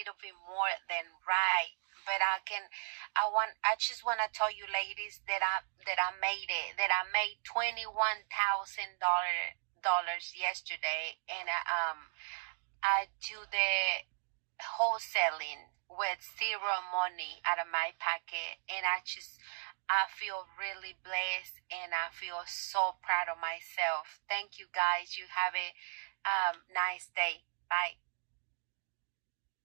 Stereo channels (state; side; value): silent; left; digital silence